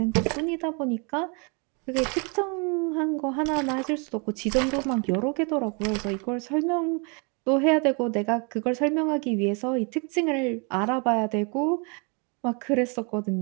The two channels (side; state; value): left; quieter; 34.1 dB